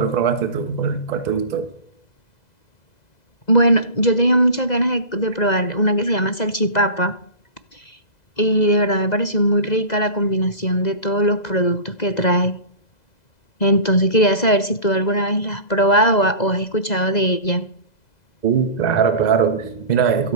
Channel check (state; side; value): late; right; 2.0 ms